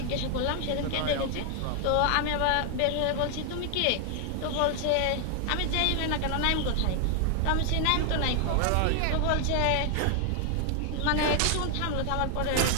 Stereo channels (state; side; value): different; both; correlation 0.00